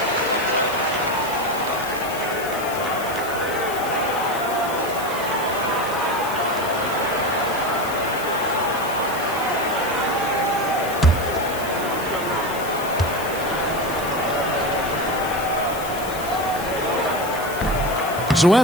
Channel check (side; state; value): left; noise; hiss, 12 dB below the sound